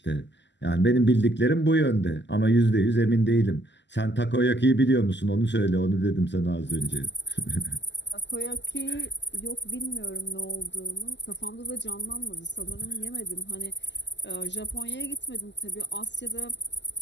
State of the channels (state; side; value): late; right; 0.51 ms